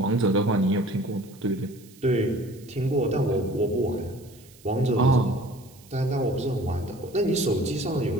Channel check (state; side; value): noise; right; hiss, 25 dB below the sound